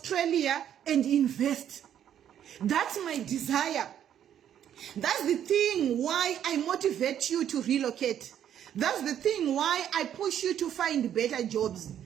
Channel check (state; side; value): quieter; left; 10.0 dB